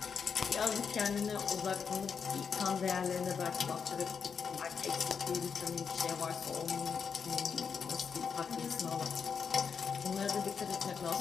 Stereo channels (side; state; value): right; quieter; 6.3 dB